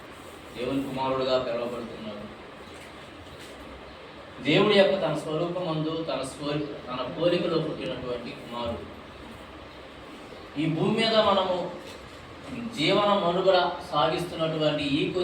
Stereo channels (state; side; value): identical; both; correlation 1.00